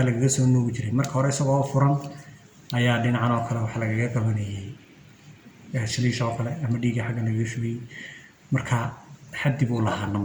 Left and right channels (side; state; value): both; identical; correlation 1.00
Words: laga soo nuugi jiray marka hore isagoo furan ayaa dhinacan oo kale waxa laga qabanayay shiliisha oo kale ama dhiigga xaggan laga shubay marka xaddi buu lahaa